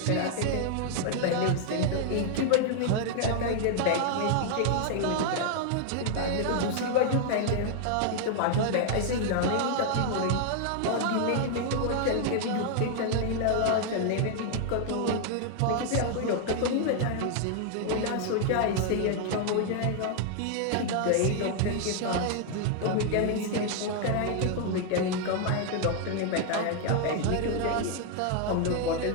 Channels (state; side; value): different; both; correlation 0.00